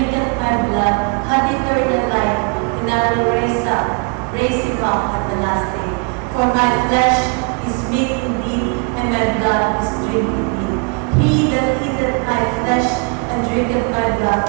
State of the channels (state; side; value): quieter; left; 34.1 dB